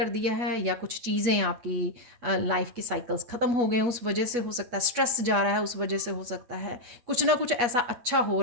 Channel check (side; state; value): left; late; 8.2 ms